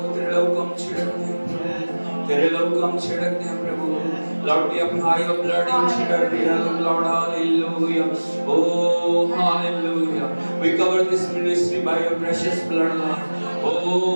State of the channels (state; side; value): inverted; both; correlation -1.00